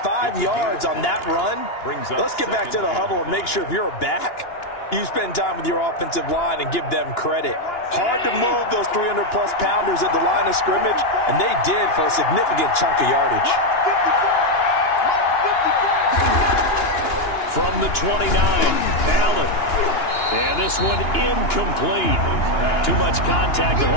5 yards on that run. Let's get back to the huddle and make sure if you're a back, you spend time with your offensive line and give them credit. Hard to move those 300-plus pounders at the line of scrimmage, and they did for a significant chunk of yardage. From the 29, Allen. And this one incomplete. Too much contact to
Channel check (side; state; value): right; late; 2.9 ms